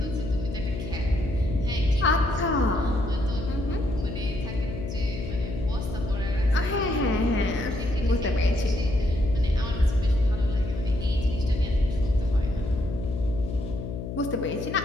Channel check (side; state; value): left; noise; hum, 6 dB below the sound